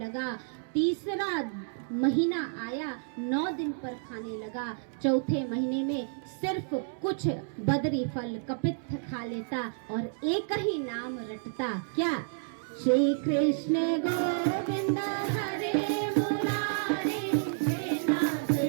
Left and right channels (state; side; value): silent; left; digital silence